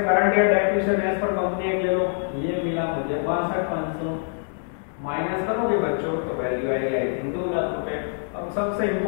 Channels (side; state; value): right; silent; digital silence